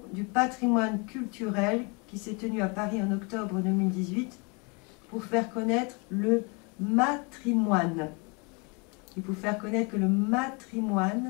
du patrimoine culturel qui s'est tenu à Paris en octobre 2018 pour faire connaître le matrimoine. Et pour faire connaître que le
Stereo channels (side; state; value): right; quieter; 31.5 dB